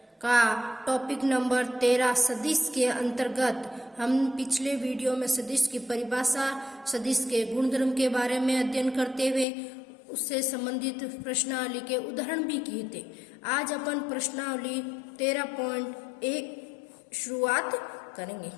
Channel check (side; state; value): right; drops out; at 9.5 s